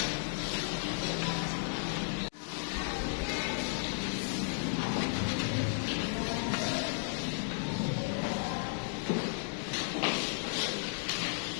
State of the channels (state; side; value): silent; right; digital silence